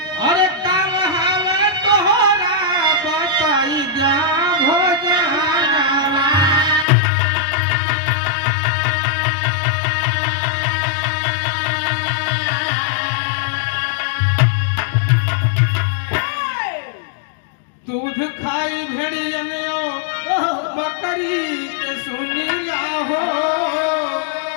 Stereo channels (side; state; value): right; drops out; at 6.9 s